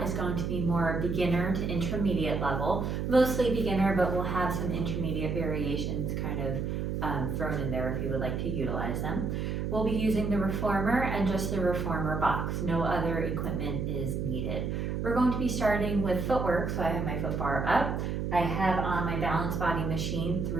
is going to be more beginner to intermediate level, mostly beginner, but we'll have some intermediate variations kind of thrown in there if you would like to utilize them. We'll be using the reformer and just the reformer box. No other equipment is needed. We're going to be starting with footwork, so I have my foot bar up. I have on my balance body machine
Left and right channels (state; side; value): noise; right; hum, 2 dB below the sound